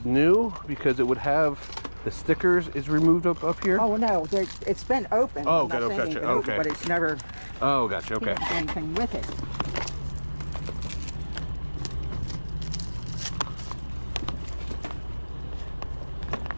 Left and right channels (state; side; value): inverted; both; correlation -1.00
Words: new because it would have the stickers is removed up here. Oh no, it's been open. Oh, I'm not okay, saying gotcha, it's been open, okay. but it's never Oh, gotcha. Okay. done anything with it.